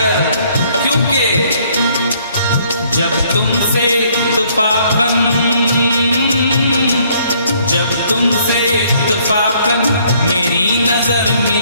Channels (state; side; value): inverted; both; correlation -0.64